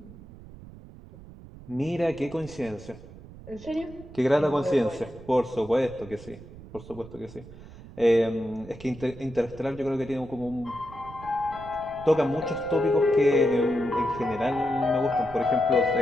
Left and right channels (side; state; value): right; noise; rumble, 17 dB below the sound